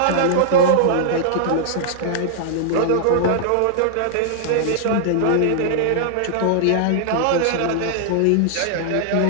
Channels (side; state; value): both; different; correlation -0.01